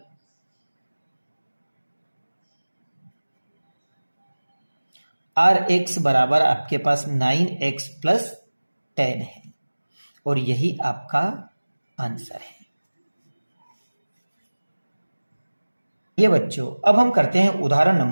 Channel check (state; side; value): inverted; both; correlation -1.00